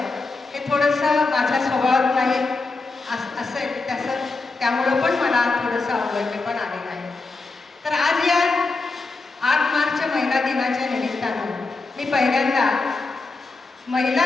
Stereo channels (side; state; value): right; quieter; 3.8 dB